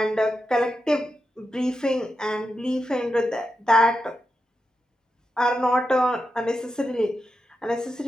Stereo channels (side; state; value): both; normal; correlation 0.88